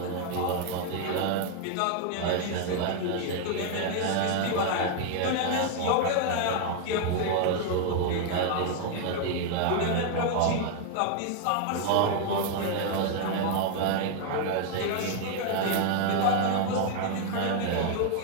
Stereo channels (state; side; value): different; both; correlation 0.00